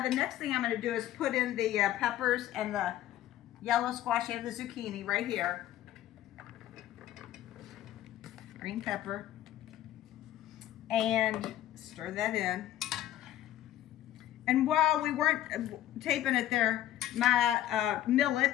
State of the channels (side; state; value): right; quieter; 12.9 dB